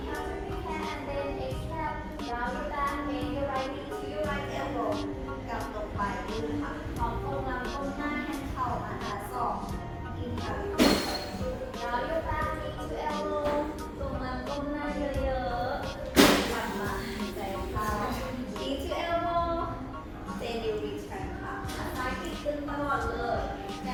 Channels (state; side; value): identical; both; correlation 1.00